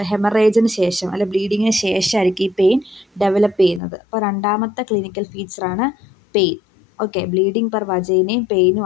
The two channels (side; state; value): right; drops out; at 3.8 s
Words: ഹെമറേജിന് ശേഷം അല്ലെ ബ്ലീഡിങ്ങിന് ശേഷമായിരിക്കും ഈ പെയിൻ ഡെവലപ്പ് ചെയ്യുന്നത്. അപ്പോൾ രണ്ടാമത്തെ ക്ലിനിക്കൽ ഫീച്ചറാണ് പെയിൻ. ഓക്കെ, ബ്ലീഡിങ് പെർ വജൈനയും